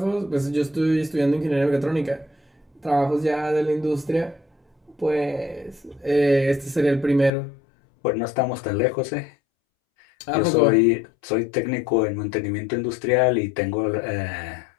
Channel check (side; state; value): right; drops out; at 7.3 s